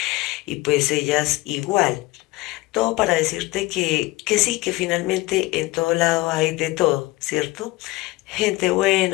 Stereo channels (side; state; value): right; quieter; 19.9 dB